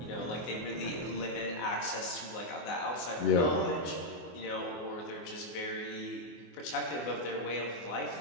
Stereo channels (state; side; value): late; right; 24 ms